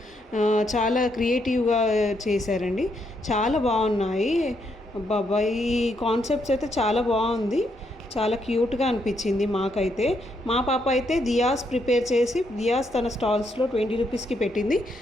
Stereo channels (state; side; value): normal; both; correlation 0.77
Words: చాలా క్రియేటివ్గా చేశారండి. చాలా బాగున్నాయి. బాబా ఈ కాన్సెప్ట్స్ అయితే చాలా బాగుంది. చాలా క్యూట్గా అనిపించింది మాకైతే. మా పాప అయితే దియాస్ ప్రిపేర్ చేసి దియాస్ తన స్టాల్స్లో 20 రూపీస్కి పెట్టింది.